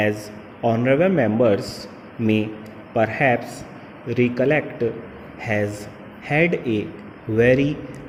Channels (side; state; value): both; identical; correlation 1.00